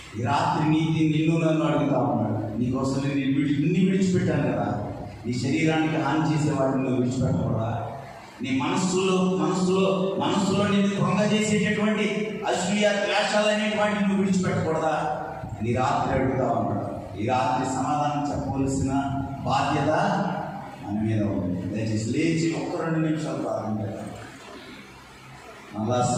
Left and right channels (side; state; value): both; identical; correlation 1.00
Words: ఈ రాత్రి నిన్ను నన్ను అడుగుతా ఉన్నాడు, నీకోసం నేను ఇన్ని విడిచిపెట్టాను కదా, నీ శరీరానికి హాని చేసే వాటిని నువ్వు విడిచిపెట్టకూడదా? నీ మనస్సులో నిన్ను భంగ చేసేటటువంటి అసూయ ద్వేషాలు అనేటువంటి నువ్వు విడిచిపెట్టకూడదా? నీ రాత్రి అడుగుతా ఉన్నాడు. ఈ రాత్రి సమాధానం చెప్పవలసిన బాధ్యత మన మీద ఉంది. దయచేసి లేచి ఒక్క 2 నిమిషాలు ప్రార్థన చేద్దాం. మళ్ళా